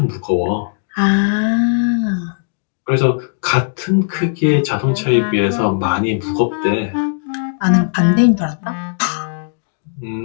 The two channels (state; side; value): silent; right; digital silence